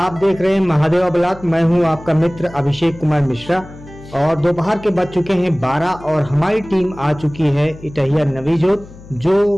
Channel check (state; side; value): noise; left; hum, 19 dB below the sound